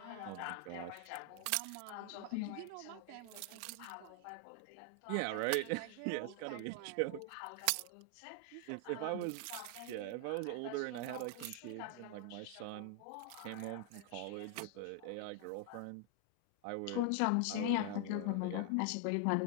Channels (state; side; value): different; both; correlation 0.00